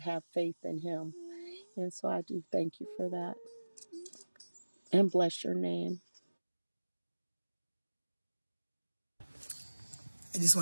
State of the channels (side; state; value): both; inverted; correlation -1.00